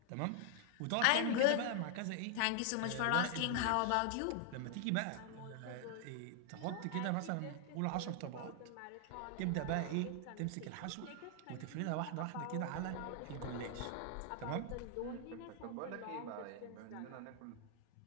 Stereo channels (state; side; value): different; both; correlation 0.00